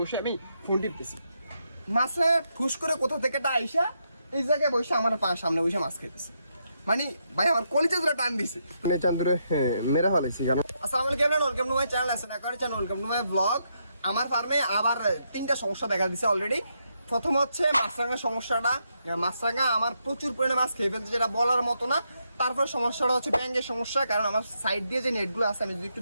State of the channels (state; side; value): inverted; both; correlation -0.80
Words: আমি ফোন টিপতেছি, মাছে ঠুস করে কোথা থেকে আইসা এই জায়গায় বসে আমার সামনে বসে মাছ খাইতেছে। মানে ভাই আমার কলিজা ধরে টান দিছে, মানে চান্দুরে মেরা ফেলাইছি কারণ আসসালামু আলাইকুম, welcome to my channel, welcome to my blog. আমার ফার্মে আবার 3টা সমস্যা দেখা দিছে অলরেডি। প্রথম হচ্ছে মাছরাঙা সমস্যাটা, মাছরাঙা আমার প্রচুর পরিমাণে মাছ খেয়ে ফেলছে, যেটা বলার মতো না। তারপর সমস্যাটা হচ্ছে ব্যাঙের সমস্যা, কারণ আমার সাইড দিয়ে যে নেটগুলো আছে আমি যদি একটু